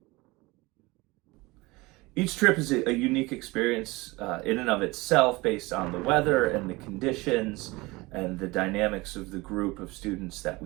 Each trip is a unique experience in and of itself, based on the weather and the conditions and the dynamics of the group of students that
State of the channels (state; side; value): quieter; left; 22.6 dB